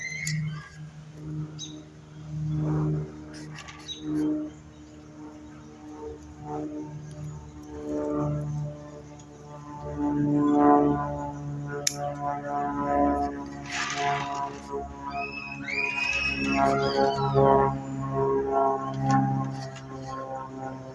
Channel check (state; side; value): identical; both; correlation 1.00